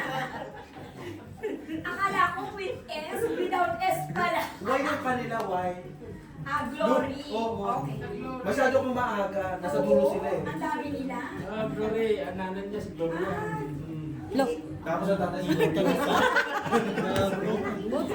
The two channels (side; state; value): both; identical; correlation 1.00